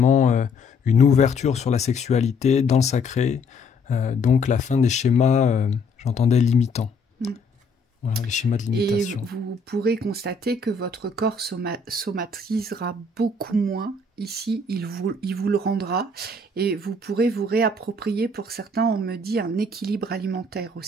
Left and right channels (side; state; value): right; quieter; 3.0 dB